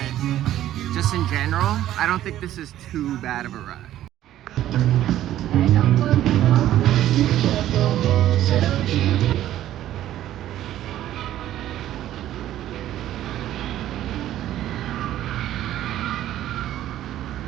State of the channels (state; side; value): quieter; left; 12.8 dB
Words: just in general, I don't think this is too bad of a ride.